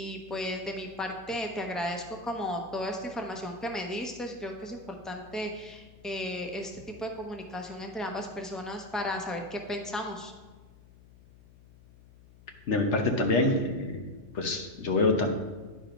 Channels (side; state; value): left; noise; hum, 23 dB below the sound